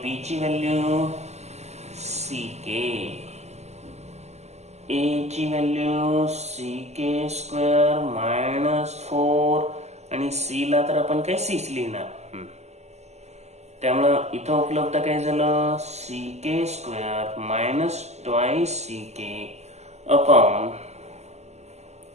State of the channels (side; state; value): left; late; 0.32 ms